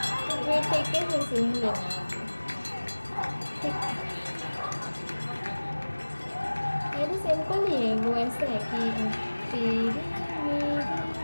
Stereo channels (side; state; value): both; inverted; correlation -1.00